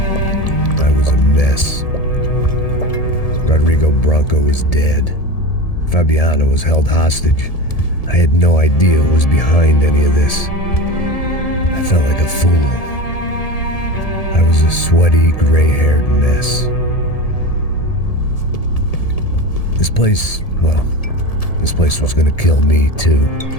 I was a mess. Rodrigo Bronco was dead. Fabiana was held hostage. I had no idea who was behind any of this. I felt like a fool. I was a sweaty, gray-haired mess. This place was gonna kill me too.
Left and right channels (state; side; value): late; right; 1.7 ms